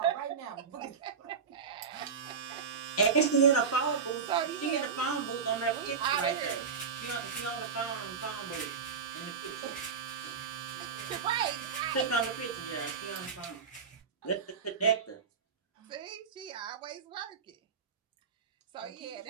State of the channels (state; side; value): quieter; left; 6.0 dB